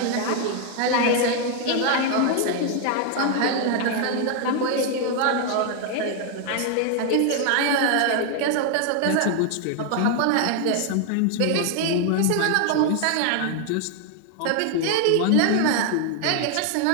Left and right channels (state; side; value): different; both; correlation 0.00